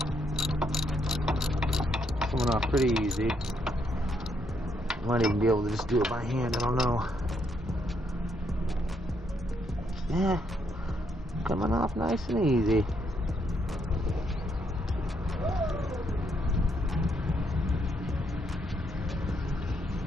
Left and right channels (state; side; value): normal; both; correlation 0.75